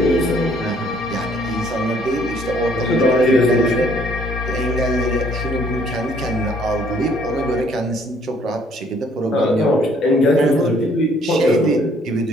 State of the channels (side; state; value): both; normal; correlation 0.62